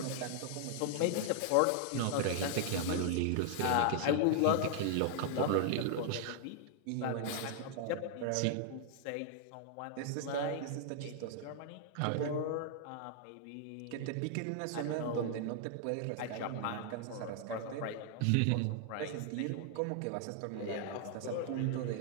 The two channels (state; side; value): different; both; correlation 0.00